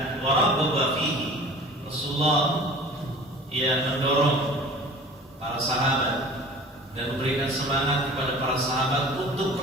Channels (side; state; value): both; normal; correlation 0.43